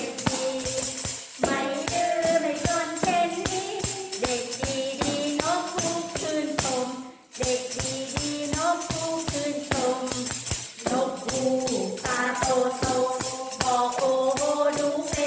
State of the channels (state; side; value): identical; both; correlation 1.00